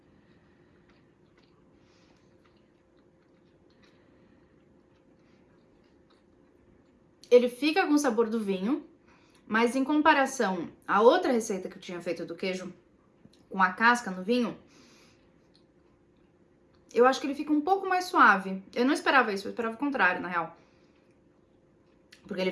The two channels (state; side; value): identical; both; correlation 1.00